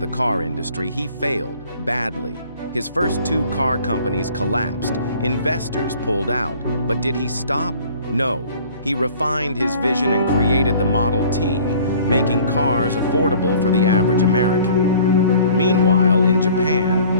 the car industry, he failed badly. His first 2 car companies collapsed. Investors pulled out. But did he stop? No. He refined his vision and created the Model T, making cars affordable for the average American. Meanwhile, in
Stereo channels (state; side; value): inverted; both; correlation -0.51